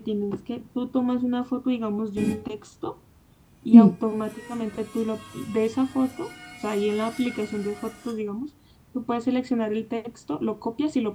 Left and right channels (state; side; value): identical; both; correlation 1.00